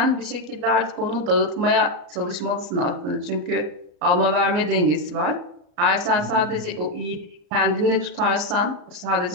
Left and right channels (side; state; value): left; late; 34 ms